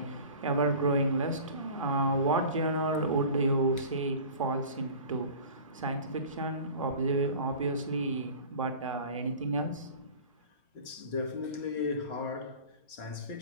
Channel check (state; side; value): inverted; both; correlation -0.40